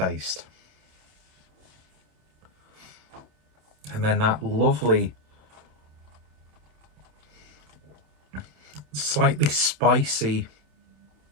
And then that lovely, slightly spicy,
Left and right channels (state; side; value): late; left; 27 ms